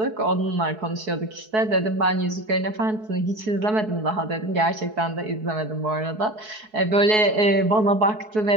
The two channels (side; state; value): left; late; 4.7 ms